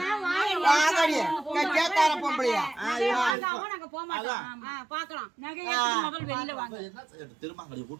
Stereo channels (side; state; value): left; drops out; at 3.4 s